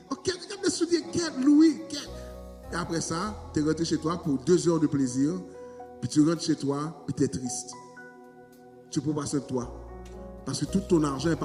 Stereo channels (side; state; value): both; identical; correlation 1.00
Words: Ok, regarde les souliers, quel louis, quel. Et après ça, tu es rentré chez toi pour 2 heures de plaisir. Puis tu rentres chez toi, puis tu es triste. Tu peux passer de toi. Parce que tout ton argent est